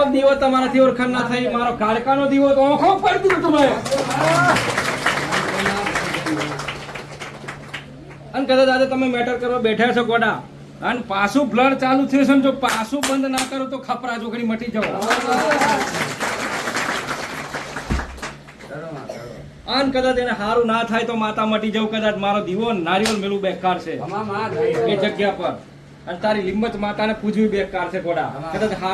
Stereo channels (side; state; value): both; identical; correlation 1.00